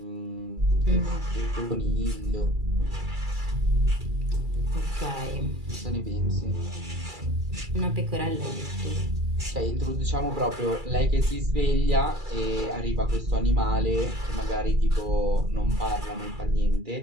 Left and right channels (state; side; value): late; left; 2.3 ms